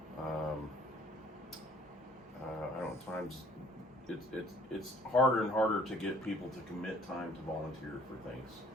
Times it's harder and harder to get people to commit time to volunteer for things.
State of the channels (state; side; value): normal; both; correlation 0.57